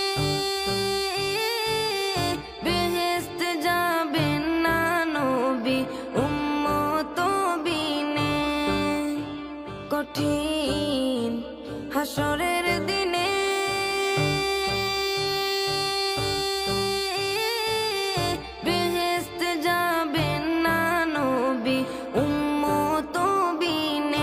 বেহেশতে যাবেন না নবী উম্মত বিনে। কঠিন হাসরের দিনে বেহেশতে যাবেন না নবী উম্মত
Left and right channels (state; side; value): identical; both; correlation 1.00